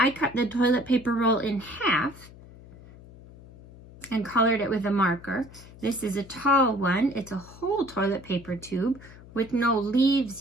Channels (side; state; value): left; noise; hum, 20 dB below the sound